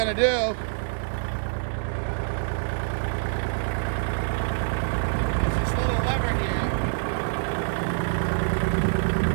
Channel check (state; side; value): silent; left; 61 dB below the other